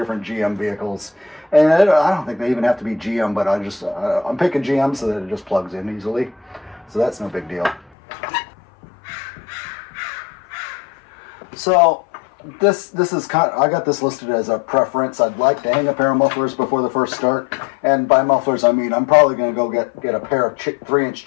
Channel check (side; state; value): right; drops out; at 7.9 s